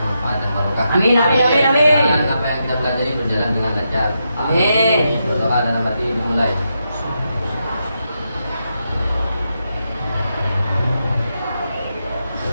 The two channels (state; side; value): inverted; both; correlation -0.84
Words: manfaat dan barokah. Amin, amin, amin, amin. Dan apa yang kita pelajari berjalan dengan lancar. Amin. Berdoa dalam hati dimulai.